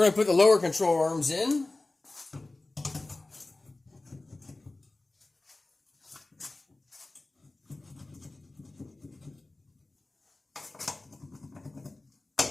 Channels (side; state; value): right; quieter; 3.0 dB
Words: going to put the lower control arms in.